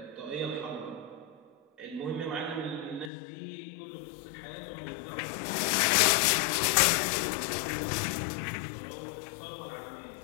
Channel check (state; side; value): drops out; right; at 3.1 s